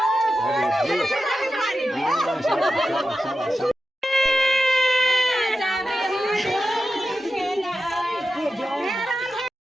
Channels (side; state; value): both; normal; correlation 0.91